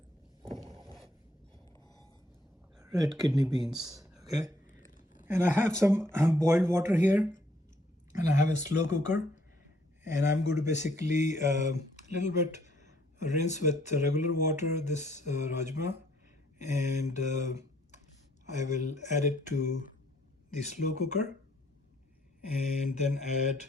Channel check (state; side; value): normal; both; correlation 0.66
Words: red kidney beans. Okay, and I have some boiled water here, and I have a slow cooker, and I'm going to basically a little bit rinse with regular water this rajma, and I will add it to the slow cooker and then add